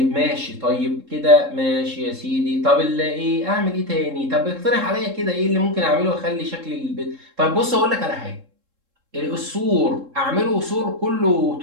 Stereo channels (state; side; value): late; left; 3.7 ms